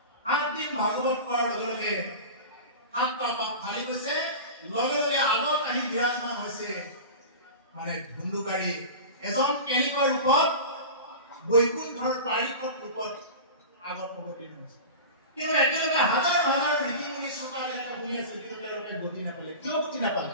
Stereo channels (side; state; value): both; inverted; correlation -0.31